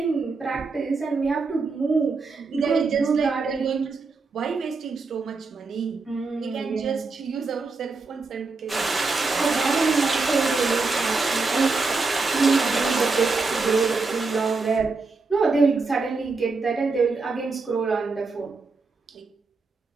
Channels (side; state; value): left; quieter; 4.1 dB